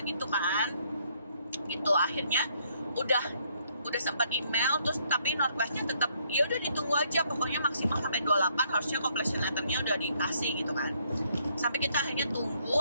gitu kan gitu. Akhirnya udah sempat email terus, tapi Northwestnya tetap ya udah ditunggu aja, pokoknya maksimal sampai 28 harusnya completion letternya udah dikasih gitu kan. Sampai kita akhirnya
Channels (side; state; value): both; inverted; correlation -0.69